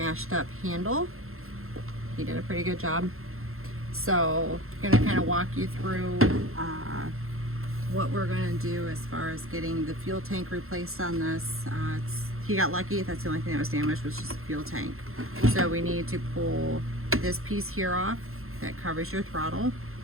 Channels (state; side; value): late; left; 0.62 ms